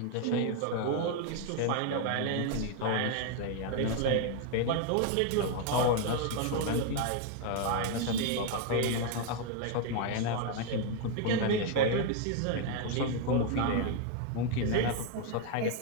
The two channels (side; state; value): both; different; correlation 0.01